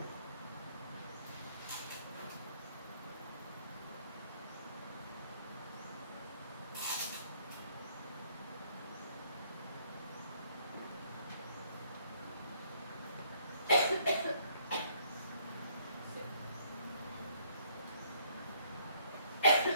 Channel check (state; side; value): inverted; both; correlation -0.65